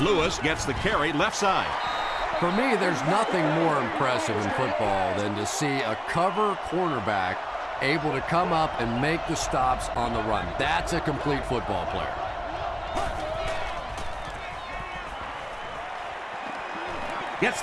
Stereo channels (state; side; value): identical; both; correlation 1.00